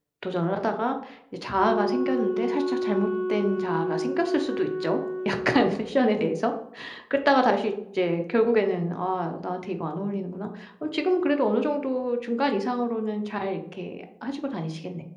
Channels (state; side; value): identical; both; correlation 1.00